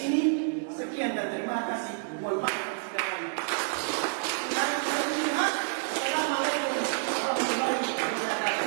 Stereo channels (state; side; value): silent; left; digital silence